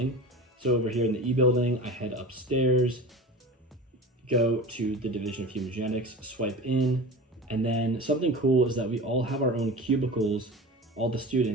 So over here in the E building, I head upstairs, go to the Division of Human Genetics, swipe in, and then something cool is that we all have our own cubicles, all the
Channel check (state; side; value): normal; both; correlation 0.33